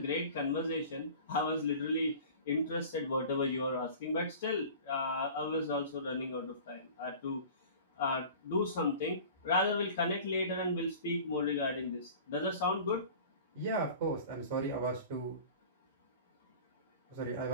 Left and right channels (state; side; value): inverted; both; correlation -0.41